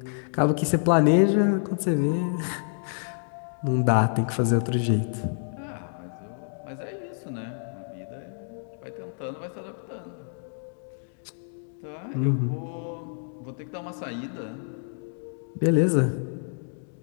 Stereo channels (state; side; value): silent; right; digital silence